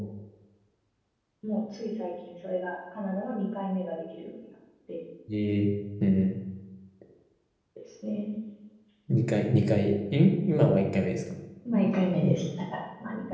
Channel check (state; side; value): identical; both; correlation 1.00